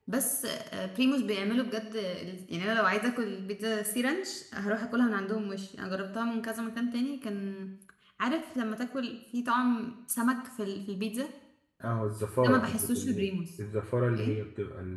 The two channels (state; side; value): identical; both; correlation 1.00